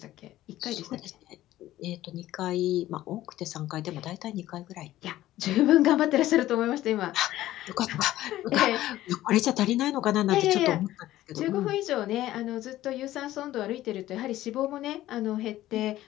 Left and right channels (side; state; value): right; quieter; 14.7 dB